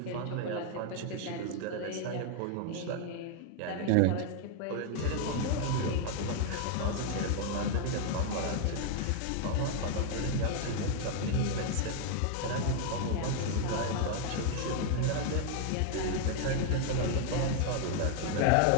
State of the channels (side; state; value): both; different; correlation 0.00